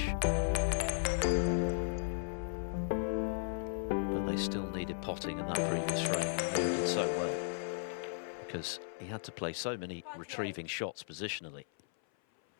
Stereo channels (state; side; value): silent; right; 54 dB below the other